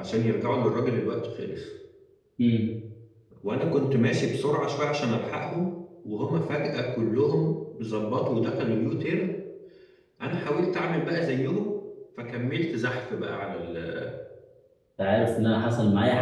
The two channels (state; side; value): identical; both; correlation 1.00